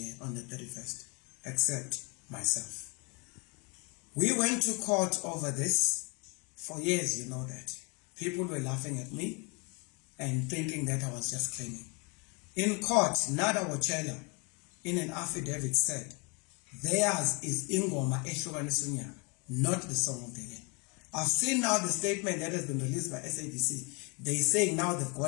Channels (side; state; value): right; quieter; 31.5 dB